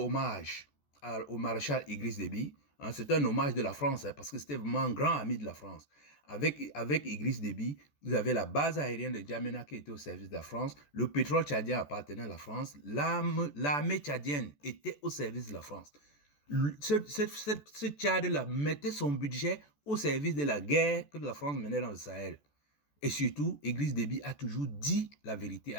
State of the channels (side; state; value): right; late; 14 ms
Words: au maréchal Idriss Déby. C'est un hommage de la France, parce que c'était vraiment un grand ami de la France. Avec Idriss Déby, vous avez la base aérienne de Djamena qui était au service de la France, le pétrole tchadien appartenait à la France, l'armée tchadienne était au service de la France. Ce Tchad-là mettait son budget au service de la guerre que la France menait dans le Sahel. Et surtout, Idriss Déby a toujours dit la vérité